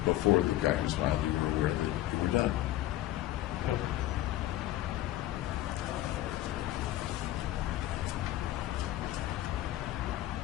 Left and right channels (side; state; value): right; quieter; 14.7 dB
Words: before the guy who smiled, you were aware that you were done. Yep.